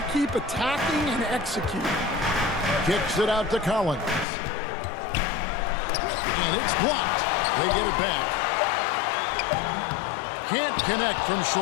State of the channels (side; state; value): right; drops out; at 4.2 s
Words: keep attacking and executing. Kicks it out to Collins. And it's blocked. They get it back. Can't connect from